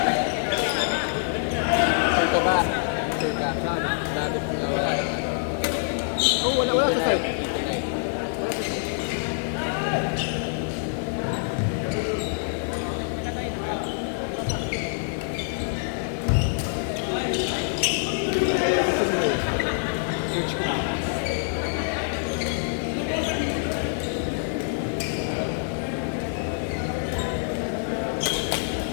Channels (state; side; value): silent; right; digital silence